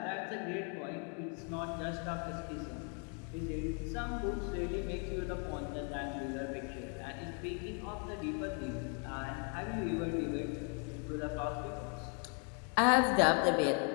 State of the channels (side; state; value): right; quieter; 39.5 dB